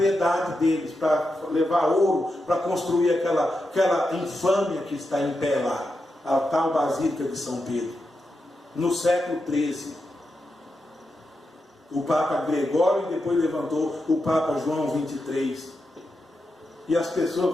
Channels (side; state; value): both; normal; correlation 0.87